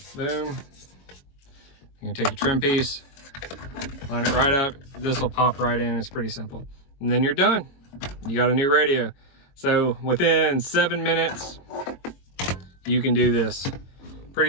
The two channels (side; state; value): right; late; 22 ms